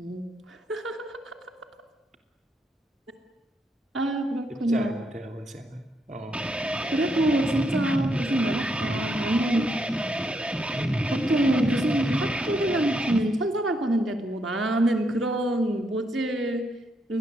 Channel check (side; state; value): both; normal; correlation 0.77